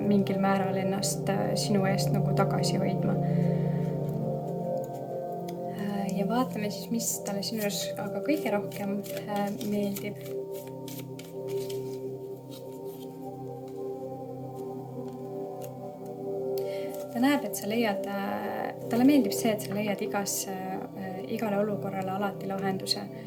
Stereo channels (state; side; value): identical; both; correlation 1.00